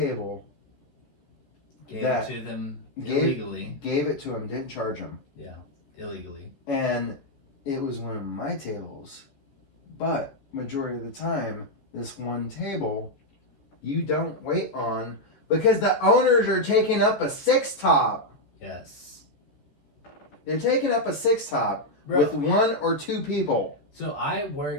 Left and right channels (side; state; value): right; late; 14 ms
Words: Gave it to them illegally. Gave it to him, didn't charge him. Yeah, illegally. And it was one of my tables. But majority of the time, this one table, you don't wait on because the owners are taking up a 6-top. Yes. They're taking up a 6-top with 1 or 2 people. So I